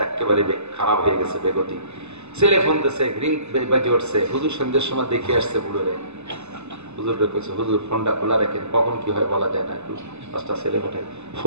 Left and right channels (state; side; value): late; left; 0.81 ms